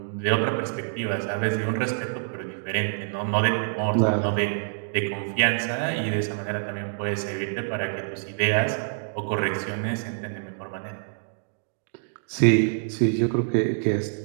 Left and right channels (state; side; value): silent; left; digital silence